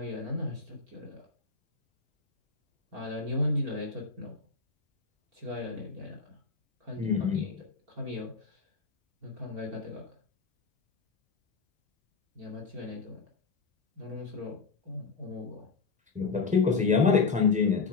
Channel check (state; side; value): quieter; right; 4.6 dB